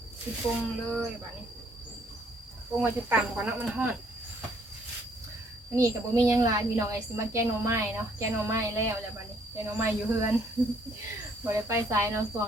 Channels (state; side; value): normal; both; correlation 0.65